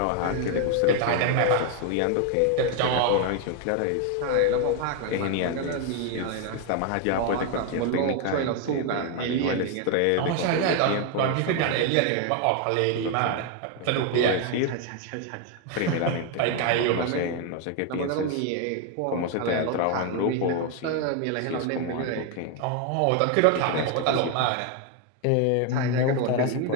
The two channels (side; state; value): both; different; correlation 0.01